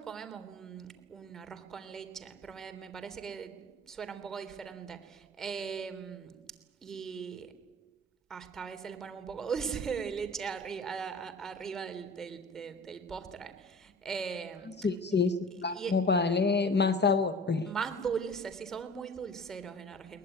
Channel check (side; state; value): both; normal; correlation 0.41